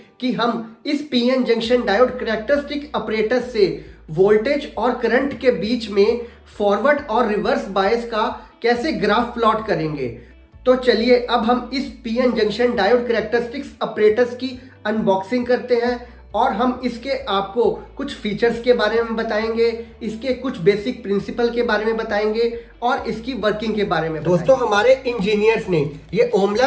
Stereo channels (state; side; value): identical; both; correlation 1.00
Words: कि हम इस PN junction diode characteristic operators से वोल्टेज और करंट के बीच में फॉरवर्ड और रिवर्स बायस का कैसे ग्राफ प्लॉट करेंगे। तो चलिए अब हम इस PN junction diode characteristics operators की अनबॉक्सिंग करते हैं और हम इसके आपको कुछ फीचर्स के बारे में बताएंगे, इसके कुछ बेसिक प्रिंसिपल के बारे में बताएंगे और इसकी वर्किंग के बारे में बताएंगे। दोस्तों, हमारे इंजीनियर्स ने ये Om